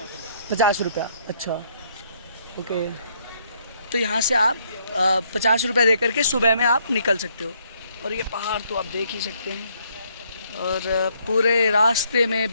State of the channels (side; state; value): both; inverted; correlation -0.70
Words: 50 रुपया। अच्छा, ओके। तो यहाँ से आप 50 रुपया दे करके सुबह में आप निकल सकते हो। और ये पहाड़ तो आप देख ही सकते हैं, और पूरे रास्ते